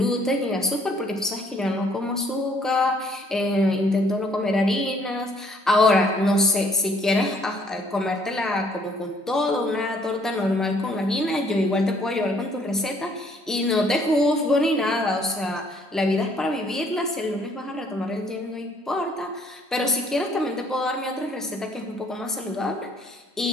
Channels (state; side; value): normal; both; correlation 0.63